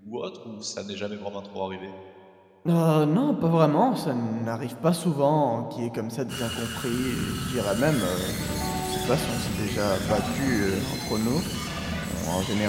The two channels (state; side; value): identical; both; correlation 1.00